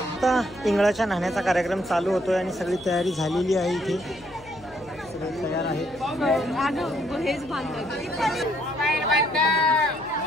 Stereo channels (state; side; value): noise; left; hum, 24 dB below the sound